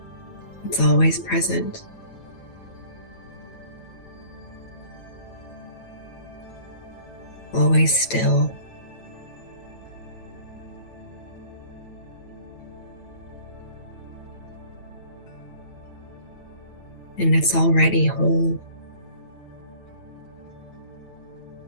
It's always present. Always still. And it's already whole.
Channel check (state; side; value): late; right; 9.1 ms